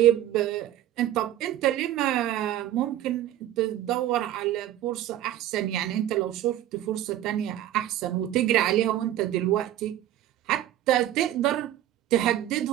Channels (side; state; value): left; quieter; 12.8 dB